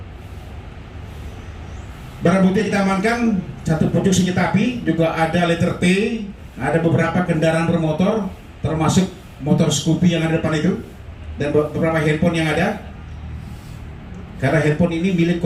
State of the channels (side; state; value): both; identical; correlation 1.00